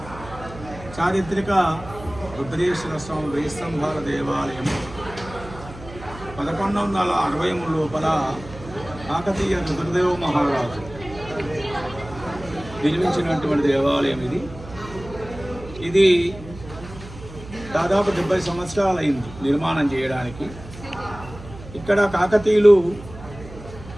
చారిత్రక రుద్రేశ్వర స్వామి వెయ్యి స్తంభాల దేవాలయం 1160 లోపల కాకతీయ రుద్రదేవ మహారాజు నిర్మించినటువంటి దేవాలయం ఇది దాదాపు 70 సంవత్సరాలు అయింది నిర్మాణం చేయడానికి. ఇక్కడ కాకతీయులు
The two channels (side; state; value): right; noise; hum, 16 dB below the sound